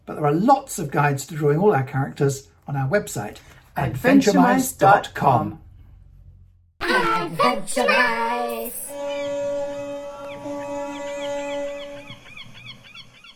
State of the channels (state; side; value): identical; both; correlation 1.00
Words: But there are lots of guides to drawing all our characters on our website, adventuremice.com. Adventuremice.